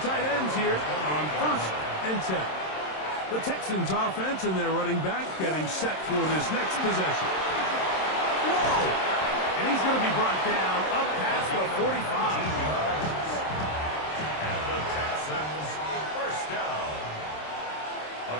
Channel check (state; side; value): late; right; 27 ms